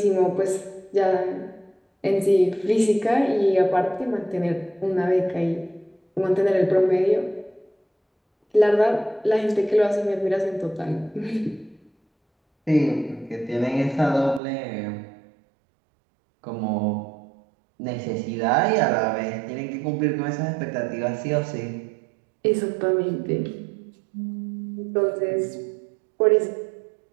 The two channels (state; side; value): drops out; left; at 14.4 s